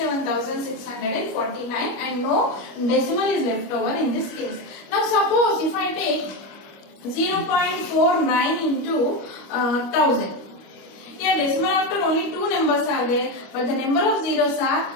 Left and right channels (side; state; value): right; late; 25 ms